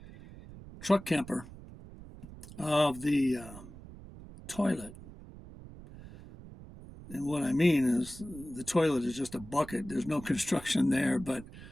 truck camper of the toilet. And what I mean is the toilet is just a bucket. There's no construction there, but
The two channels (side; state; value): right; noise; rumble, 16 dB below the sound